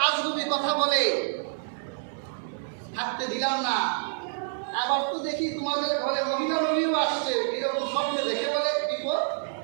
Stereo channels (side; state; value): left; silent; 60 dB below the other